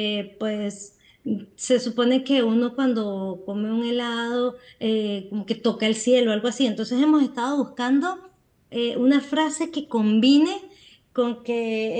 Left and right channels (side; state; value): both; identical; correlation 1.00